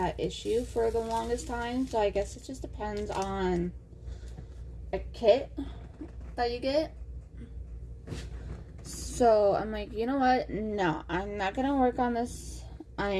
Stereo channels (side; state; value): both; identical; correlation 1.00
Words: issue for the longest time, so I guess it just depends on a kit that you get. So I'm like, you know what? No, I'm not gonna work on this.